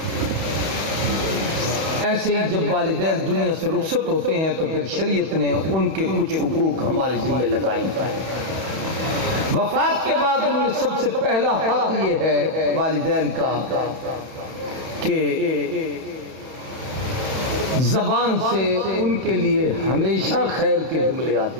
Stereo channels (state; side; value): late; left; 31 ms